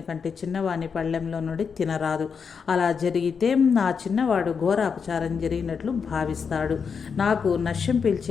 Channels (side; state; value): right; quieter; 6.1 dB